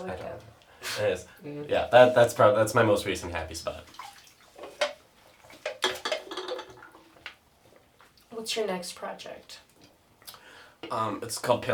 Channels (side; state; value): both; identical; correlation 1.00